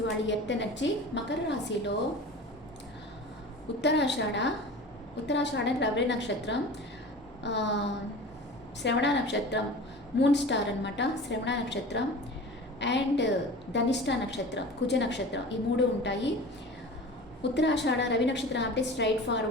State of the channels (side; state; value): both; normal; correlation 0.36